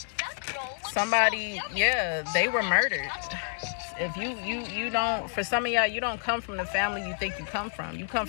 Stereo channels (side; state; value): right; silent; digital silence